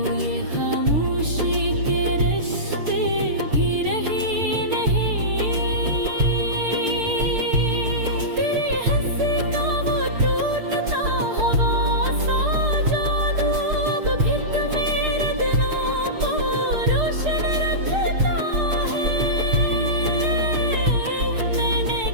ये खामोशी के रिश्ते भी रही नहीं। तेरी हंसी का वो टूटता हवा सा जादू अब भी तो मेरे दिलों को रोशन रखता है। मैंने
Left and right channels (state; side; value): late; left; 6.6 ms